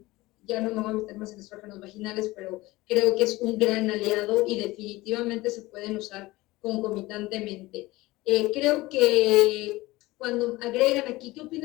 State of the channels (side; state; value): right; quieter; 19.7 dB